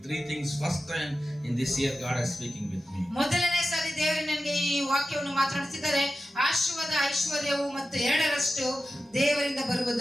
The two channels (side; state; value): both; normal; correlation 0.93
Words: Three things first time in this year God is speaking with me. ಮೊದಲನೇ ಸಾರಿ ದೇವರು ನನಗೆ ಈ ವಾಕ್ಯವನ್ನು ಮಾತನಾಡುತ್ತಿದ್ದಾರೆ. ಆಶೀರ್ವಾದ, ಐಶ್ವರ್ಯವು ಮತ್ತು ಎರಡರಷ್ಟು ದೇವರಿಂದ